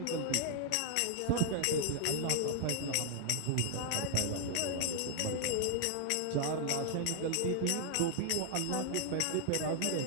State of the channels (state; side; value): different; both; correlation 0.00